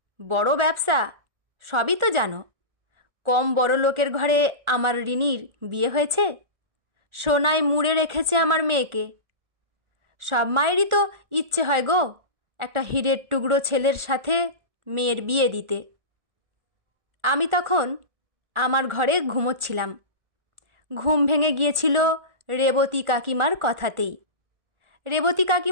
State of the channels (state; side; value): late; left; 1.4 ms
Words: বড় ব্যবসা, সবই তো জানো। কম বড় লোকের ঘরে আমার রিনির বিয়ে হয়েছে। সোনায় মুড়ে রেখেছে আমার মেয়েকে। সব মায়েরই তো ইচ্ছে হয় গো একটা হীরের টুকরো ছেলের সাথে মেয়ের বিয়ে দিতে। আমি তখন আমার ঘরে ঘুমোচ্ছিলাম। ঘুম ভেঙে গিয়েছিল রেবতী কাকিমার কথাতেই। রেবতী